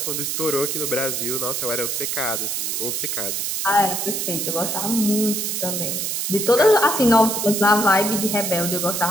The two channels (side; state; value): right; noise; hiss, 1 dB below the sound